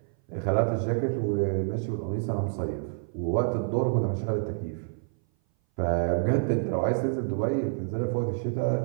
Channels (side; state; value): left; silent; 57 dB below the other